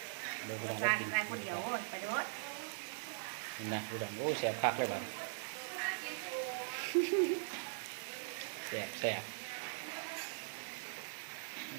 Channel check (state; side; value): silent; left; digital silence